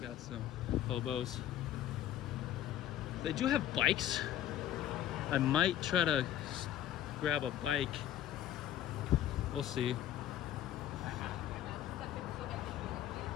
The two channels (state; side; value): quieter; right; 11.6 dB